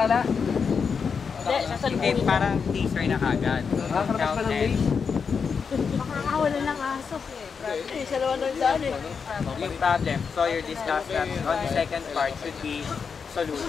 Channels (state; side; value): quieter; right; 5.9 dB